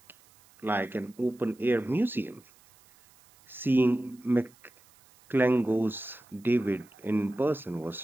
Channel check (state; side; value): noise; right; hiss, 29 dB below the sound